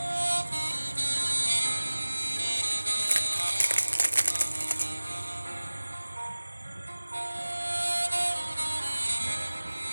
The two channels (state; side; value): inverted; both; correlation -1.00